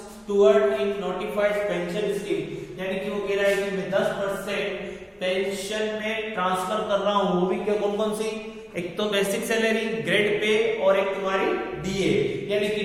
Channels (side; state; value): both; identical; correlation 1.00